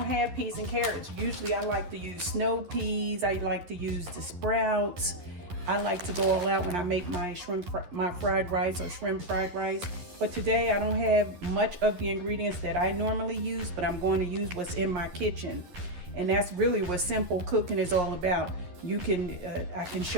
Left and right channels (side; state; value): left; late; 11 ms